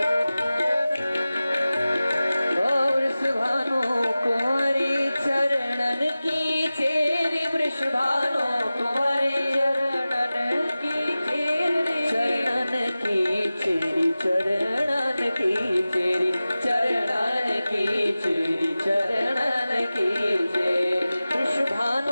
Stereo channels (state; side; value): inverted; both; correlation -0.96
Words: वृषभानु कुंवरी चरणन की चेरी, वृषभानु कुंवरी चरणन की चेरी, चरणन की चेरी, चरणन की चेरी, चरणन की चेरी, चरणन की चेरी।